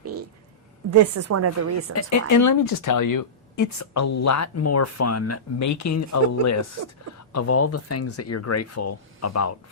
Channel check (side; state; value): both; normal; correlation -0.17